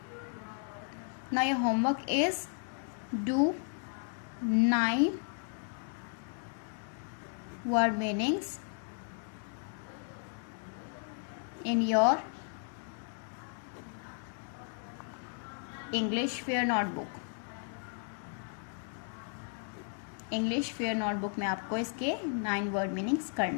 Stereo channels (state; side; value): silent; right; 55 dB below the other